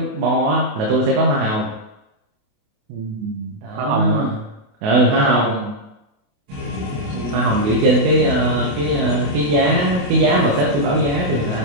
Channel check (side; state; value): left; late; 27 ms